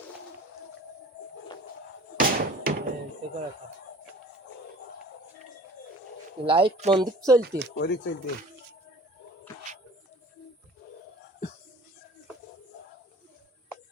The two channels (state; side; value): normal; both; correlation 0.46